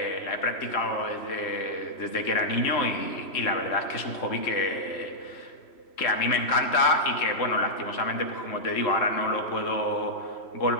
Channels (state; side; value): late; right; 3.1 ms